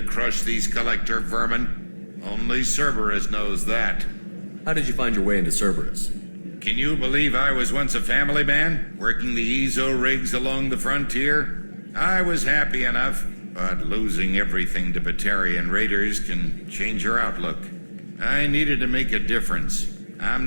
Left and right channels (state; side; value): inverted; both; correlation -1.00